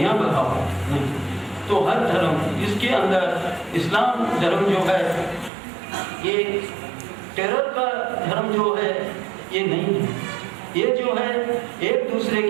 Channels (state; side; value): drops out; left; at 5.5 s